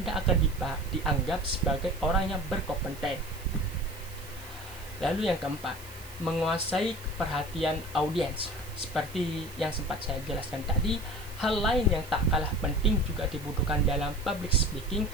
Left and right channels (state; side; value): noise; right; hiss, 18 dB below the sound